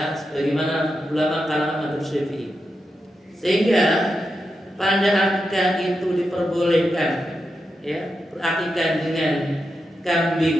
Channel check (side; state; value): both; normal; correlation 0.87